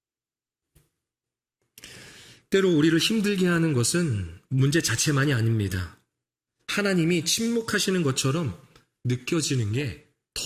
때로 우리를 힘들게 하는 것은 문제 자체만이 아닙니다. 하나님이 침묵하시는 것처럼 느껴지는 게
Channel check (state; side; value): identical; both; correlation 1.00